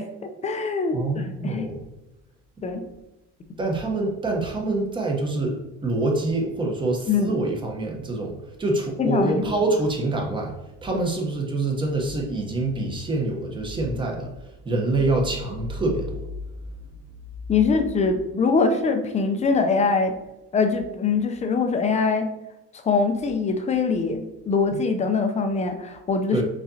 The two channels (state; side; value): normal; both; correlation 0.36